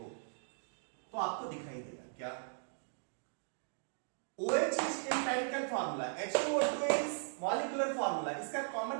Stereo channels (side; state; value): left; silent; digital silence